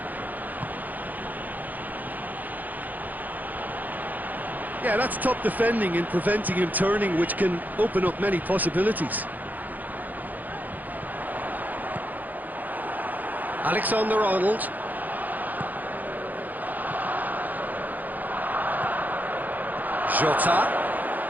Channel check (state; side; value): late; left; 0.083 ms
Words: Yeah, that's top defending and preventing him turning, which can open up many possibilities. Alexander-Arnold. Jota.